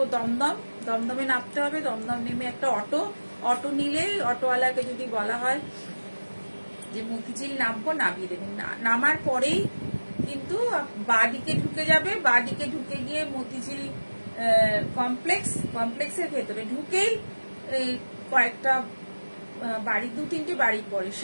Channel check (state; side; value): inverted; both; correlation -1.00